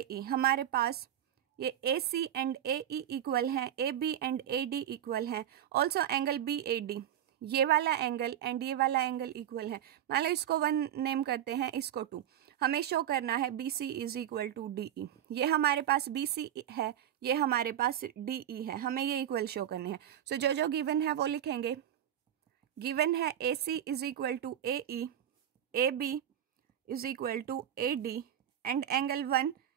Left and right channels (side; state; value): left; quieter; 10.6 dB